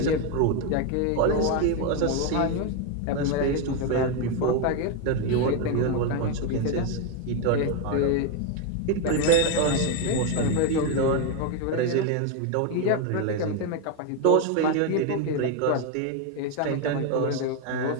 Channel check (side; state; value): both; different; correlation 0.02